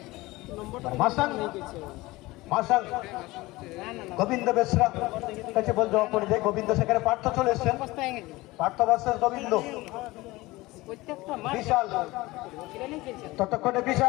মাসাং গোবিন্দ বেসরা কাছে বল দেওয়া পড়ে যায়, গোবিন্দ সেখানে পার্থ চলে এসছেন, পার্থ ভার্সেস গোবিন্দ। বিশাল ততক্ষণে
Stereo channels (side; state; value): right; quieter; 20.2 dB